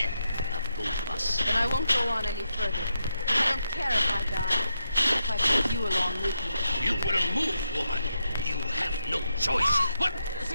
of both of us. Then I won't go on any further. I don't care if I die, if I take you along with me. You will move, woman. You have no choice. What?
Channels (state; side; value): inverted; both; correlation -0.82